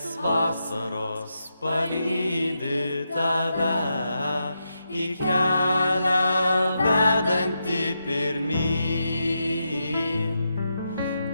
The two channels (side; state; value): both; inverted; correlation -0.85